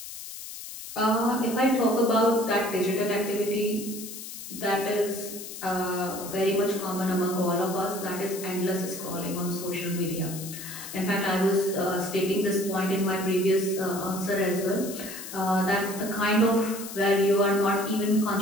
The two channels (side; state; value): left; noise; hiss, 11 dB below the sound